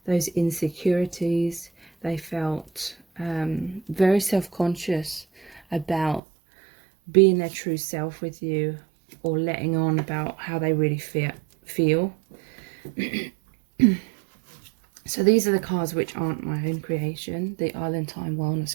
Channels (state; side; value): drops out; left; at 6.2 s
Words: those insecurities. They felt very self-conscious about being their true self with you, or letting on about how they really feel. So these are the cards which aren't my own creation, the Island Time